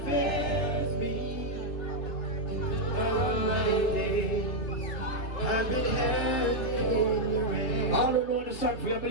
fails me. All my days I've been happy in your hands. All who know the song for you,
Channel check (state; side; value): late; right; 3.3 ms